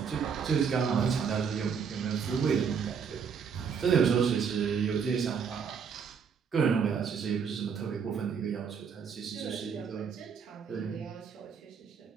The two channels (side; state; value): left; quieter; 6.5 dB